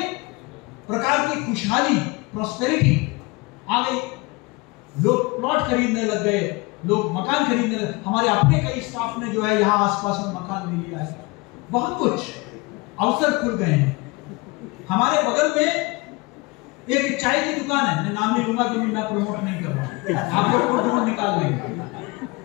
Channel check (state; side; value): quieter; right; 24.7 dB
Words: प्रकार की खुशहाली, प्रॉस्पेरिटी आ गई। लोग प्लॉट खरीदने लग गए, लोग मकान खरीदने लगे। हमारे अपने कई स्टाफ ने जो है यहाँ आसपास में मकान ले लिया है। बहुत कुछ अवसर खुल गए हैं। हमारे बगल में एक चाय की दुकान है, मैं नाम नहीं लूंगा क्योंकि मैं प्रमोट नहीं कर रहा, आप लोग को ढूंढ निकाल लेंगे।